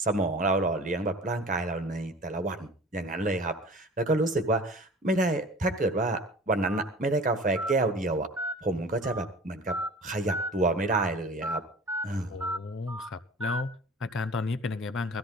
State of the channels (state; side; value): normal; both; correlation 0.42